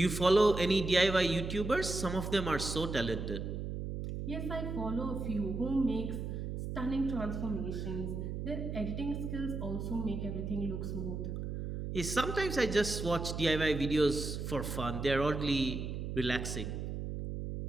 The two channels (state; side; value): noise; right; hum, 4 dB below the sound